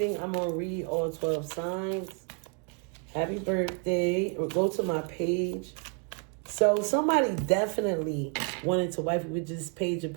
I'm going to read all 12 signs. Happy birthday. Or go to my page. So somebody definitely wanted to wife you with this Page of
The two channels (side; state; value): left; quieter; 37.8 dB